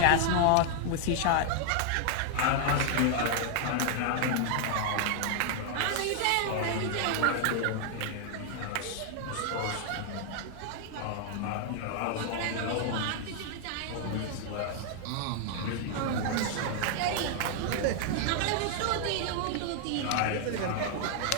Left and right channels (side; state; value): both; different; correlation 0.00